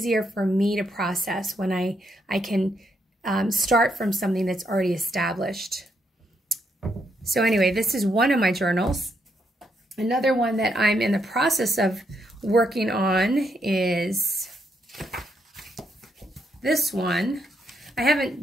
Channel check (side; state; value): both; normal; correlation 0.77